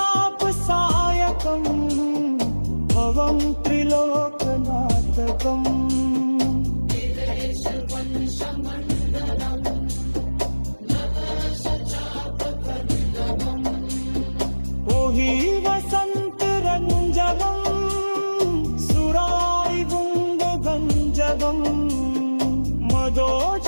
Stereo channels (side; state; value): both; inverted; correlation -1.00